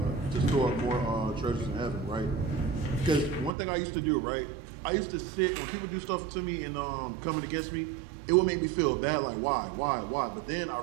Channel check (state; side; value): drops out; left; at 3.5 s